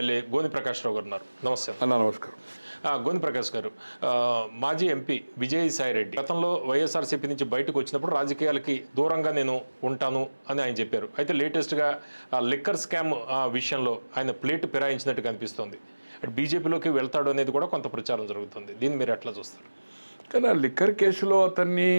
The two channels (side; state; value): both; inverted; correlation -1.00